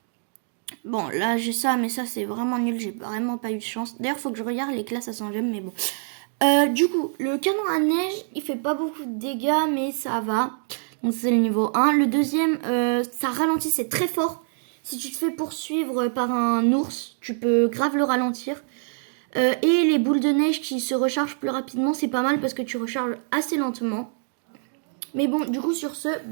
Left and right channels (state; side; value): silent; left; digital silence